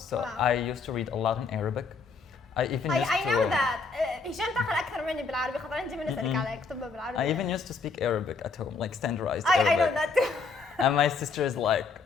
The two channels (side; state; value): right; quieter; 4.5 dB